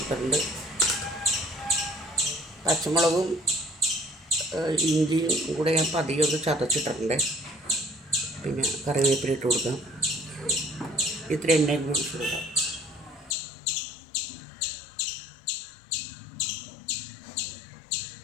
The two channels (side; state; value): right; drops out; at 13.4 s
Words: പച്ചമുളകും ഇഞ്ചിയും കൂടെ ഞാൻ പതിയെ ഒന്ന് ചതച്ചിട്ടുണ്ട്. പിന്നെ കറിവേപ്പില ഇട്ട് കൊടുക്കാം. ഇത്ര എണ്ണയും കൂടി ഇട്ട് കൊടുക്കാം.